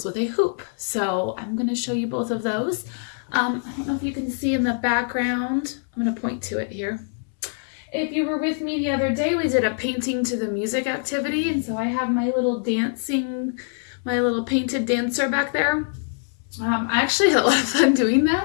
with a hoop. So I'm going to show you both of those. I don't know if you can see in the background. I'm going to point to it here. If you were with me the other day, we did a painting to the music activity, and so I have my little painted dancer back there. I actually had a lot of fun doing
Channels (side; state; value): right; silent; 63 dB below the other